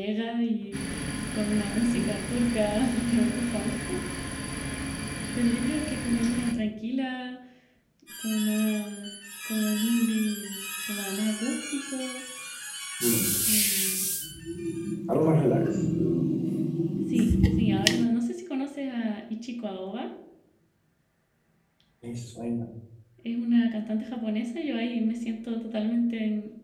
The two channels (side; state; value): both; identical; correlation 1.00